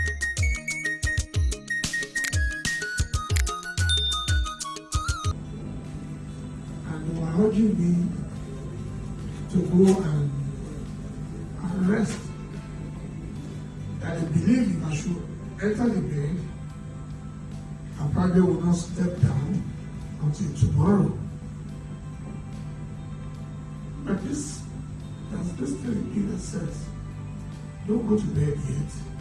And they were urging me to go and rest. That I believe if I should enter the bed, I probably will not step down until tomorrow. But there's this thing that says, don't go to bed yet.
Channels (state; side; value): identical; both; correlation 1.00